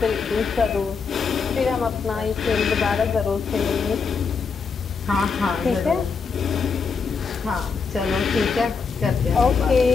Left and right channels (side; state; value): right; quieter; 5.3 dB